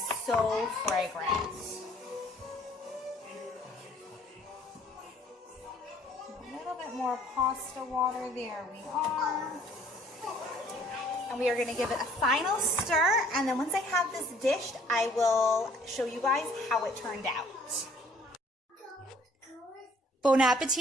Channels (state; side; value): normal; both; correlation 0.58